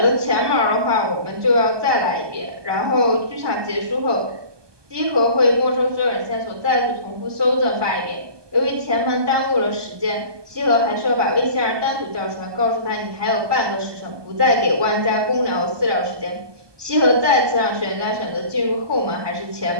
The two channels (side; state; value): left; late; 1.2 ms